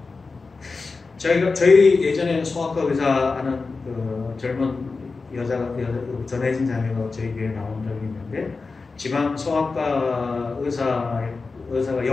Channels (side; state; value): right; quieter; 4.1 dB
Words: 거예요. 저희 예전에 소아과 의사 하는 그 젊은 전혜진 자매가 저희 교회에 나온 적이 있는데, 지방 소아과 의사가